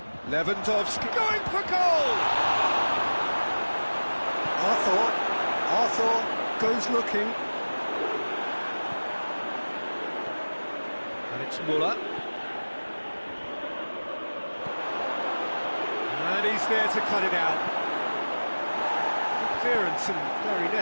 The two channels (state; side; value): inverted; both; correlation -1.00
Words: Lewandowski going for goal! Arthur goes looking. And it's Muller. And he's there to cut it out. Good clearance and very